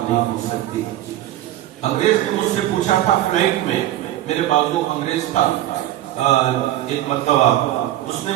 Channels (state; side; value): quieter; left; 13.8 dB